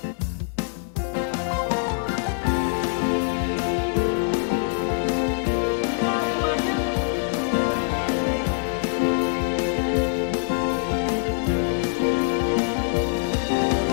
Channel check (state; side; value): silent; right; 63 dB below the other